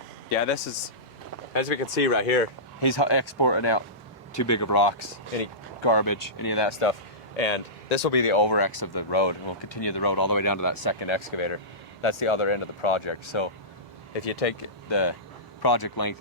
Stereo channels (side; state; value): both; normal; correlation -0.19